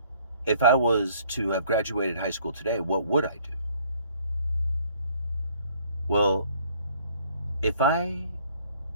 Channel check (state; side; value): inverted; both; correlation -0.60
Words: if I was to have graduated high school today, what would I do? Well, if I